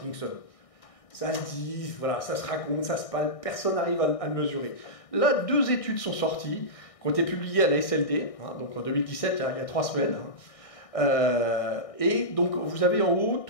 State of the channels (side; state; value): right; late; 1.6 ms